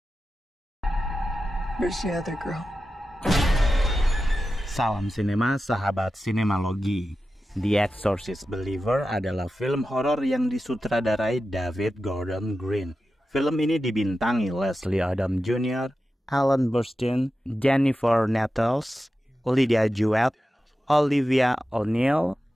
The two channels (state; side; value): normal; both; correlation 0.92